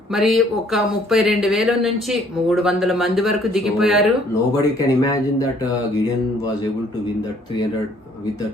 మరి ఒక 32,000 నుంచి 300 మంది వరకు దిగిపోయారు. So, nobody can imagine that Gideon was able to win that 300 with that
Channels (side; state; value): both; normal; correlation 0.61